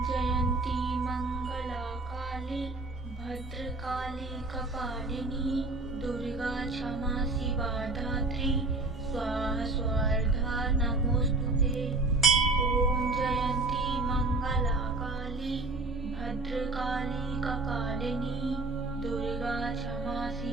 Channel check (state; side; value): quieter; left; 3.1 dB